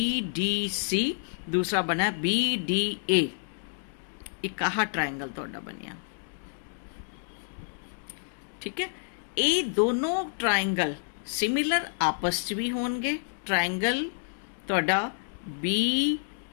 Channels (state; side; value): silent; right; digital silence